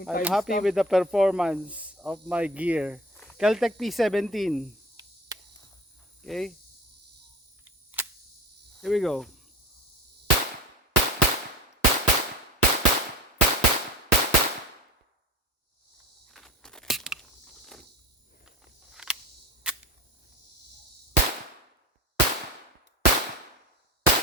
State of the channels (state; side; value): normal; both; correlation 0.34